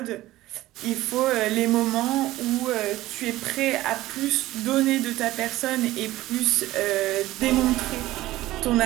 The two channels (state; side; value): quieter; left; 16.5 dB